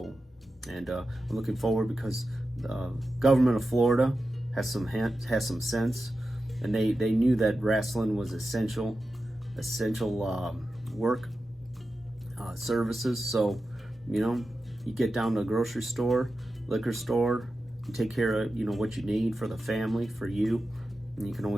And I'm looking forward because the government of Florida has some sense, and they knew that wrestling was essential work services. So, you know, you get down to a grocery store, liquor store, you take care of, you know, what you need for the family, for you, and you can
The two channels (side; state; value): both; normal; correlation 0.92